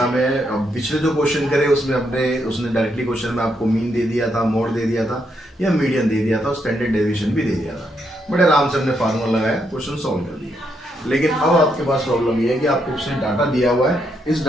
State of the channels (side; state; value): both; normal; correlation 0.78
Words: में अब पिछले जो क्वेश्चन करे उसमें उसने डायरेक्टली क्वेश्चन में आपको मीन दे दिया था, मोड दे दिया था या मीडियन दे दिया था, स्टैंडर्ड डेविएशन भी दे दिया था। बड़े आराम से हमने फार्मूला लगाया, क्वेश्चन सॉल्व कर दिया। लेकिन अब आपके पास प्रॉब्लम ये है कि आपको उसने डाटा दिया हुआ है, इस